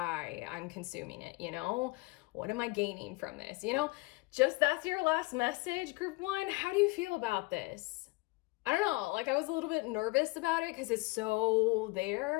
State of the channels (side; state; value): right; quieter; 24.5 dB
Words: I'm consuming it, you know? What am I gaining from this? You know, just that's your last message, group 1. How do you feel about this? I don't know, like I was a little bit nervous about it because it's so